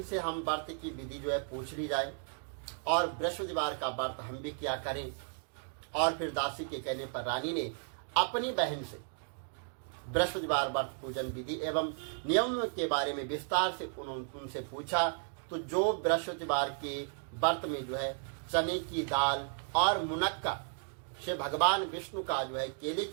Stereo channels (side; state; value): left; silent; 55 dB below the other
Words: हम व्रत की विधि जो है पूछ ली जाए और बृहस्पतिवार का व्रत हम भी क्या करें। और फिर दासी के कहने पर रानी ने अपनी बहन से बृहस्पतिवार व्रत पूजन विधि एवं नियम के बारे में विस्तार से उनसे पूछा। तो जो बृहस्पतिवार के व्रत में जो है चने की दाल और मुनक्का से भगवान विष्णु का जो है केले